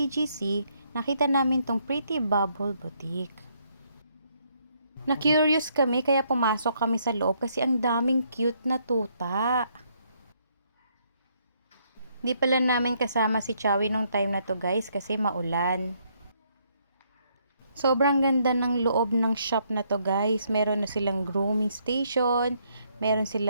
nakita namin tong Pretty Bubble Boutique. Na-curious kami kaya pumasok kami sa loob kasi ang daming cute na tuta. Di pala namin kasama si Chowie nung time na to guys kasi maulan. Sobrang ganda ng loob ng shop na to guys. Meron na silang grooming station, meron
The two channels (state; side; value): inverted; both; correlation -0.71